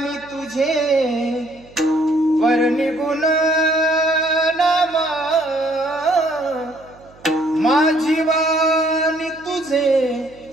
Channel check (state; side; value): noise; right; hum, 26 dB below the sound